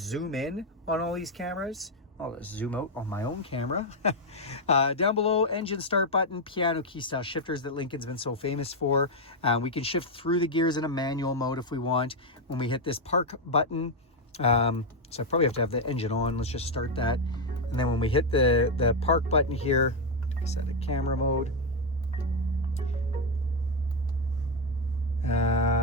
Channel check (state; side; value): normal; both; correlation 0.03